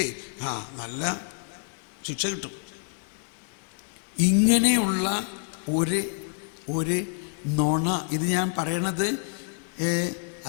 നല്ല ശിക്ഷ കിട്ടും. ഇങ്ങനെയുള്ള ഒരു നുണ, ഇത് ഞാൻ പറയണത്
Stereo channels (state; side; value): silent; right; 60 dB below the other